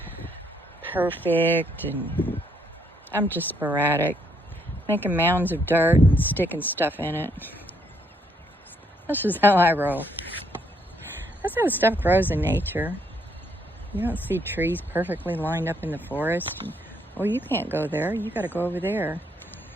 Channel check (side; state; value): both; normal; correlation 0.71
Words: perfect, and I'm just sporadic, making mounds of dirt and sticking stuff in it. That's just how I roll. That's how stuff grows in nature. You don't see trees perfectly lined up in the forest. And, well, you can't go there. You got to go over there.